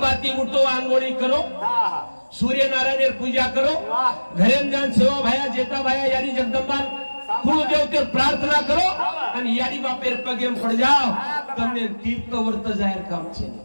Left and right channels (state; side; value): inverted; both; correlation -1.00